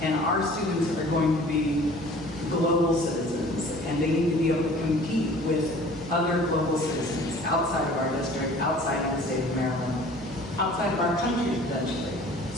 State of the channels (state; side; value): noise; right; hum, 18 dB below the sound